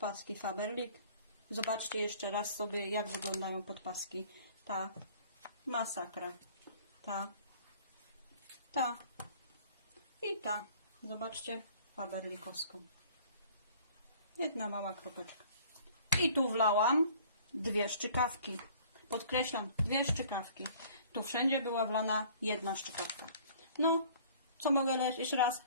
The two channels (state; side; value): inverted; both; correlation -0.52